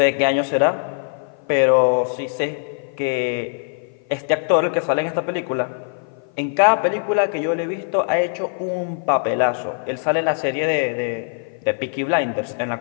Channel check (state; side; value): silent; right; 55 dB below the other